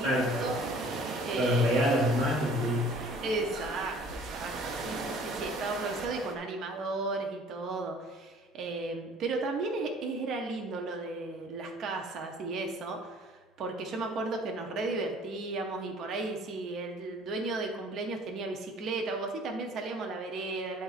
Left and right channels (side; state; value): both; normal; correlation 0.52